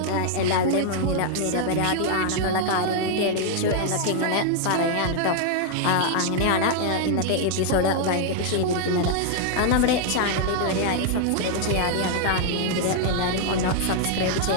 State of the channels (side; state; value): both; different; correlation 0.00